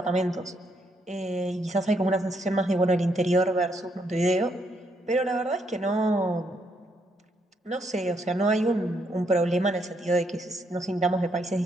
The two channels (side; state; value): both; normal; correlation 0.74